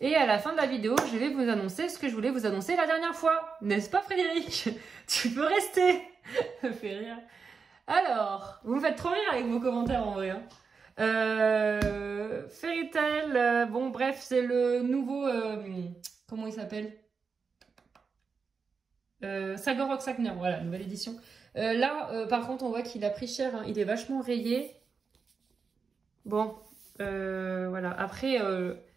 à la fin de la vidéo, je vais vous annoncer ce que je voulais vous annoncer la dernière fois. N'est-ce pas Frédéric? Tu peux rester. Ça fait rire. Alors, vous me faites trop rire avec vos commentaires en vrai. Hein. Fairy Tail, bon bref, c'est le nouveau... comment il s'appelle? Sagor Sagner, voilà, nouvelle édition. Là, par contre, on voit qu'il a pris cher, hein. Il est vachement rayé. Bon, voilà. Après,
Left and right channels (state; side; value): quieter; left; 5.3 dB